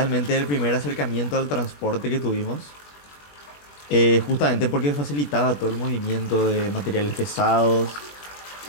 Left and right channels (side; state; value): right; late; 21 ms